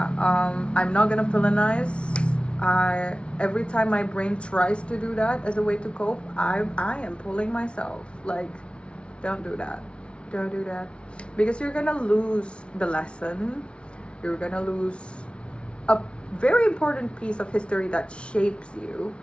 I'm not gonna villainize. Every time my brain tries to do that as a way to cope, I am pulling myself, like, don't do that, don't do that, because you're gonna lose the lesson. You're gonna lose a very important piece of history that shapes you.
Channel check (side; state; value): right; late; 0.059 ms